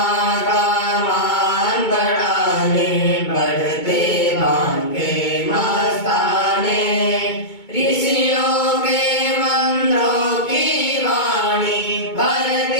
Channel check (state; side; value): late; right; 2.2 ms